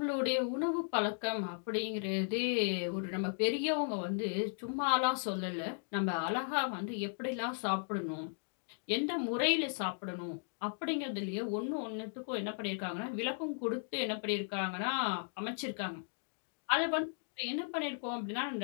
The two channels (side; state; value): right; silent; digital silence